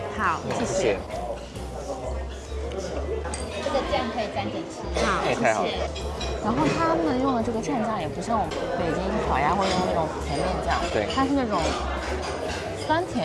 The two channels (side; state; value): both; identical; correlation 1.00